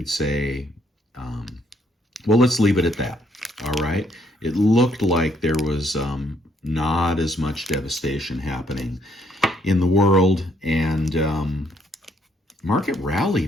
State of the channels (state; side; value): normal; both; correlation 0.69